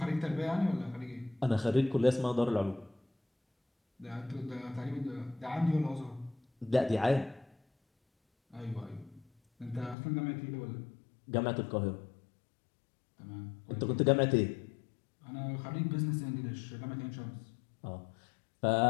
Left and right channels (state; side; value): drops out; right; at 10.0 s